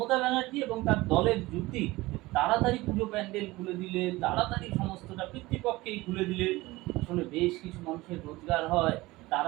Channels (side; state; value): left; quieter; 20.0 dB